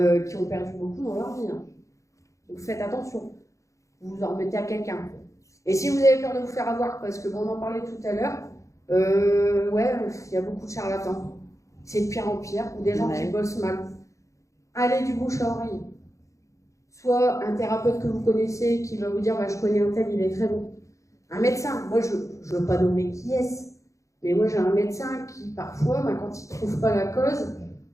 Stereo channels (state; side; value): late; right; 0.15 ms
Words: qui ont perdu beaucoup dans leur vie. Hein. Donc faites attention. Vous vous en remettez à quelqu'un. Et si vous avez peur de vous faire avoir, parce que on en parlait tout à l'heure, il y a beaucoup de charlatans. C'est de pire en pire, ou des gens qui bossent mal. Allez du bouche à oreille. soit un thérapeute que vous connaissez qui va vous dire bah, je connais un tel, il est très bon. Un médecin, moi je ne veux pas nommer qui est-ce, mais moi j'ai un médecin qui parfois, bah, quand il ne trouve pas la cause,